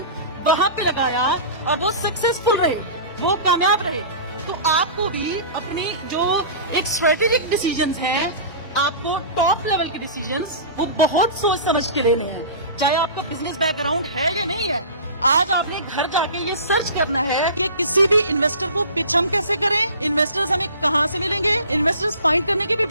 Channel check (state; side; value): inverted; both; correlation -0.37